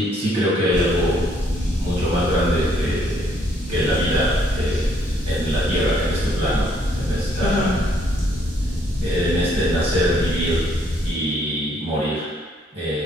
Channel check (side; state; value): both; normal; correlation 0.68